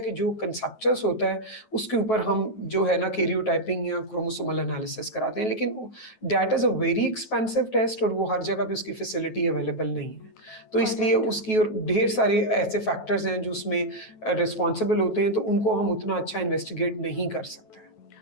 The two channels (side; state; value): right; late; 9.3 ms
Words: कि जो कंसेप्चुअस होता है, उसके ऊपर हम जो है ना कैरियोटाइपिंग या क्रोमोसोमल एनालिसिस कराते हैं। लेकिन that is a very expensive test और वो हर जगह पे उसकी फैसिलिटी अवेलेबल नहीं है। तो इसलिए उसकी और ढेर सारे ऐसे फैक्टर्स हैं जो उसमें रिस्पॉन्सिबल होते हैं, तो उनको हम उतना अच्छा इन्वेस्टिगेट नहीं कर सकते।